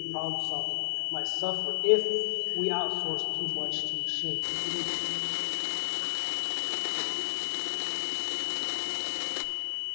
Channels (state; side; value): silent; right; 57 dB below the other